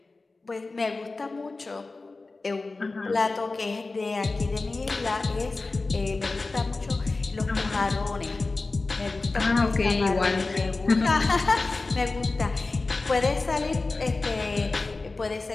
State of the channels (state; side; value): quieter; right; 3.5 dB